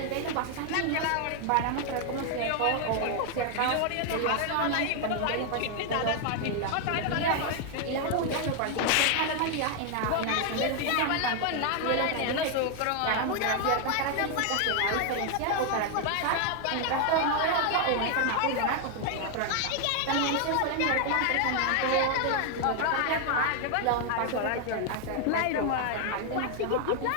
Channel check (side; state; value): both; different; correlation 0.00